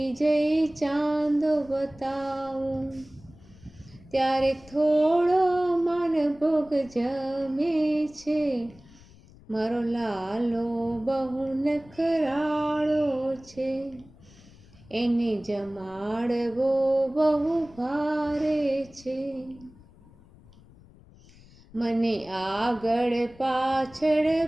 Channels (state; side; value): noise; left; rumble, 24 dB below the sound